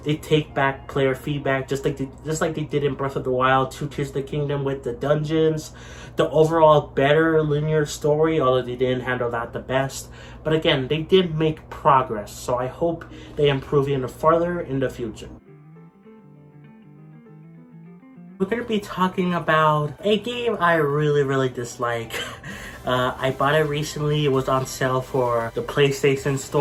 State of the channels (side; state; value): both; identical; correlation 1.00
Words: they take back player feedback, just like they did in Breath of the Wild 2 Tears of the Kingdom with the dungeons. The overall better linear story, although they didn't handle that the best. But again, they did make progress, so I hope they improve even further in the future. We're going to be talking about a game I really dislike. I bought it recently. It was on sale for the PlayStation